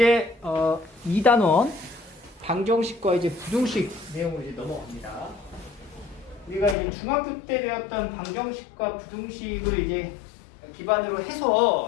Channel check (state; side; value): drops out; right; at 6.8 s